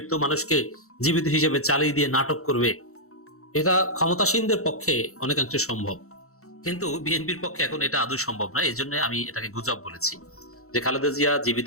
মানুষকে জীবিত হিসেবে চালিয়ে দিয়ে নাটক করবে। এটা ক্ষমতাসীনদের পক্ষে অনেকাংশে সম্ভব, কিন্তু বিএনপির পক্ষে এখন এটা আদৌ সম্ভব নয়। এই জন্য আমি এটাকে গুজব বলেছি যে খালেদা জিয়া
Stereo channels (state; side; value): late; right; 0.64 ms